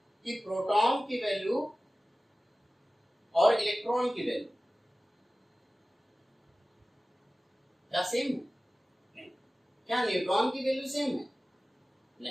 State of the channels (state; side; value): normal; both; correlation 0.97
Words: कि प्रोटॉन की वैल्यू और इलेक्ट्रॉन की वैल्यू क्या सेम है? नहीं। क्या न्यूट्रॉन की वैल्यू सेम है?